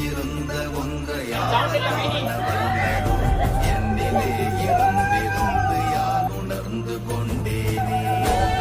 இருந்த ஒன்றை யான் காணவல்லதோ, என்னிலே இருந்திருந்து யான் உணர்ந்து கொண்டேனே. ஓம்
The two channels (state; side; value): identical; both; correlation 1.00